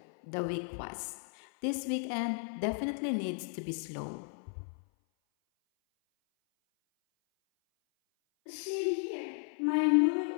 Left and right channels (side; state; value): right; silent; 55 dB below the other